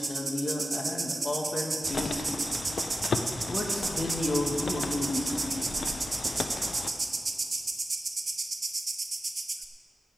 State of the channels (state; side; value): normal; both; correlation 0.92